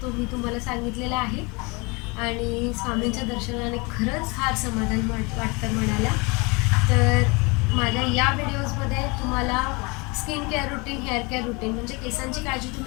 तो मी तुम्हाला सांगितलेला आहे. आणि स्वामींच्या दर्शनाने खरंच फार समाधान वाटतं मनाला. तर माझ्या या व्हिडिओजमध्ये तुम्हाला skin care routine, hair care routine म्हणजे केसांची काळजी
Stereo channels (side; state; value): right; quieter; 28.0 dB